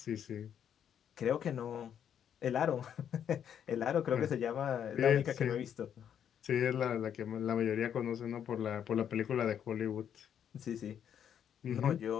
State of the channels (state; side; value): quieter; right; 9.0 dB